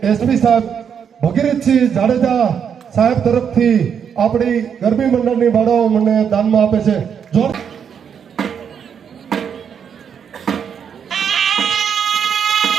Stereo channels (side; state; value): left; quieter; 7.6 dB